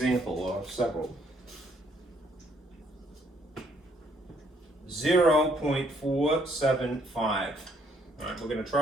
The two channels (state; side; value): normal; both; correlation 0.67